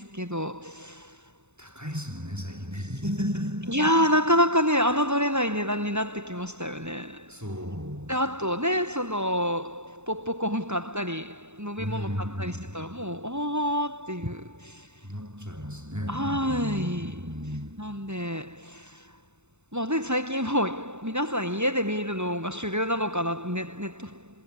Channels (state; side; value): late; left; 0.82 ms